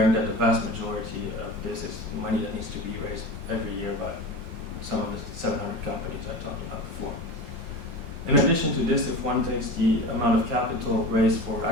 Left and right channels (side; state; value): left; late; 5.8 ms